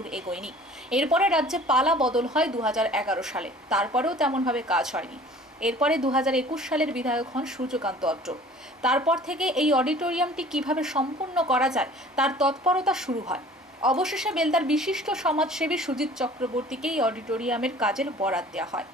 এগোয়নি। এরপরে রাজ্যে পালা বদল হয় 2011 সালে, তারপরেও তেমনভাবে কাজ হয়নি। এরপরে 2021 সালের বিধায়ক হন সূর্যকান্ত অত্র। তারপর থেকে এই অডিটোরিয়ামটি কিভাবে সম্পূর্ণ করা যায় তার তৎপরতা শুরু হয়। অবশেষে বেলদার বিশিষ্ট সমাজসেবী সুজিত চক্রবর্তীকে এই অডিটোরিয়ামের কাজের বরাত দেওয়া হয়,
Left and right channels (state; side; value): normal; both; correlation 0.48